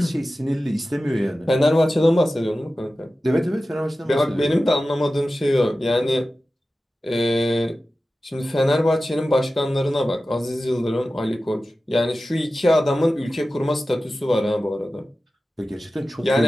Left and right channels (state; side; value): normal; both; correlation 0.95